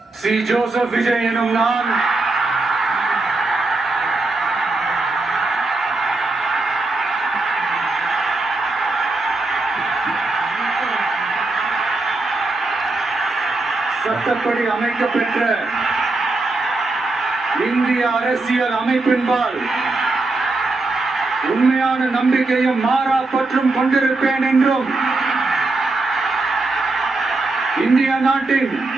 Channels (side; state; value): left; quieter; 3.3 dB